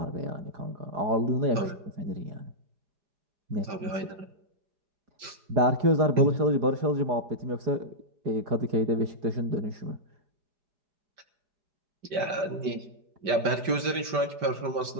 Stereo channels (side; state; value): left; late; 5.1 ms